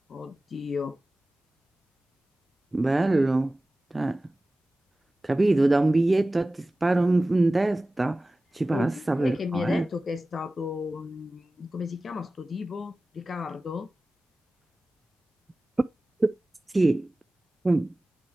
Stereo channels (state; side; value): normal; both; correlation 0.97